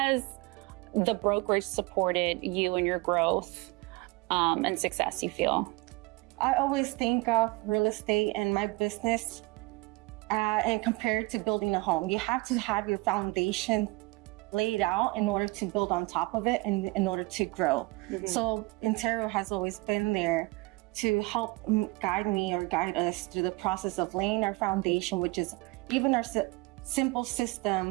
the brokerage supported you in your growth and success, you feel? I always think of real estate and my business and compare it to building a home. You have to have your foundation laid out in order to build on top of it and in order to grow. So Intero has always been there to help guide me or guide us through the process of laying our foundation, which is even our simple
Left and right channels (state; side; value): quieter; left; 23.8 dB